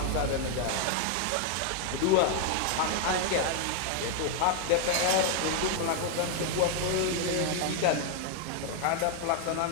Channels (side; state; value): both; different; correlation 0.00